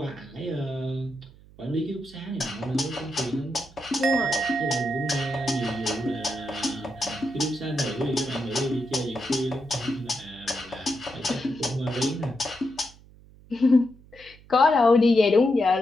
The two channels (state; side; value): noise; right; hum, 24 dB below the sound